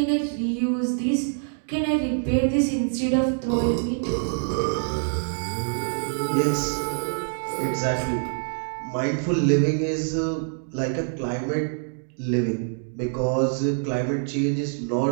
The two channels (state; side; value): silent; left; digital silence